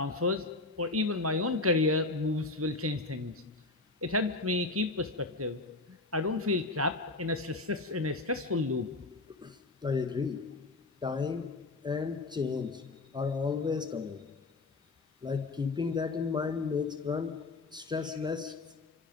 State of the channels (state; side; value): quieter; right; 3.3 dB